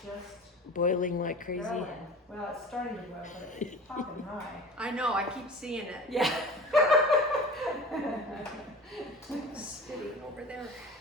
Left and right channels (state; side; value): normal; both; correlation 0.39